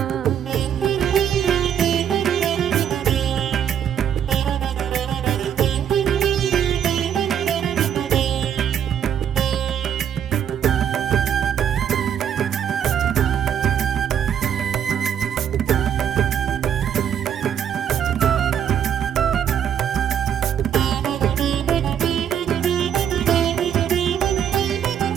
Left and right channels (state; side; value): quieter; left; 8.9 dB